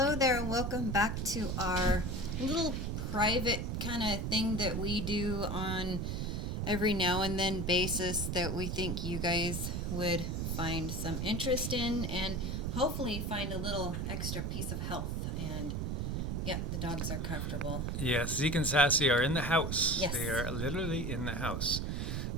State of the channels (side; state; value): right; noise; rumble, 1 dB below the sound